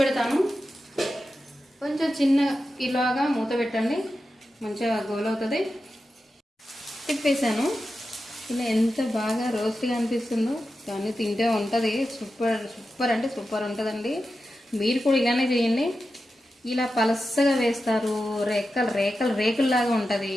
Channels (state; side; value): normal; both; correlation 0.91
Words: కొంచెం చిన్న ఇలాగా మూత పెట్టండి, మంచిగా గోలవుతుంది. తిప్పేసాను. ఇలా ఎంత బాగా రోస్ట్గా అనిపిస్తుందో, కానీ తింటే ఉంటుంది. సూపర్ అంటే సూపర్ ఉంటుందండి. మీరు కూడా ఇలానే చేయండి. ఇలా పలసగా వేస్తారు, రేకుల్లాగా ఉంటుంది.